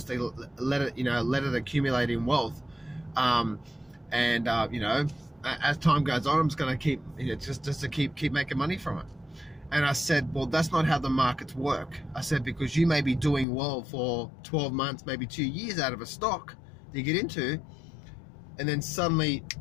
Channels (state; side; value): drops out; right; at 13.5 s